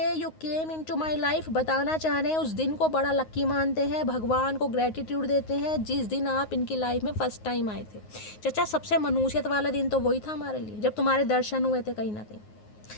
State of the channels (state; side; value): late; right; 9.5 ms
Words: you came into my life. बताना चाह रहे हैं उस दिन को बड़ा लक्की मानते हैं, भगवान को ग्रेटिट्यूड देते हैं जिस दिन आप इनकी लाइफ में फर्स्ट टाइम आए थे। चचा सबसे मनुष्यत वाला दिन तो वही था हमारे लिए, जब तुम्हारे दर्शन हुए थे कहीं ना कहीं।